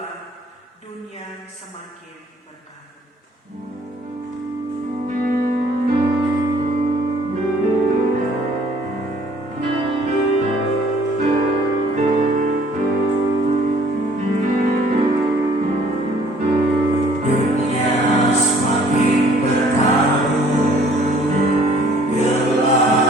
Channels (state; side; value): normal; both; correlation 0.58